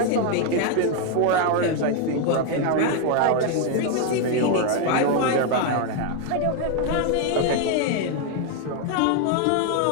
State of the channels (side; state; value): both; different; correlation 0.01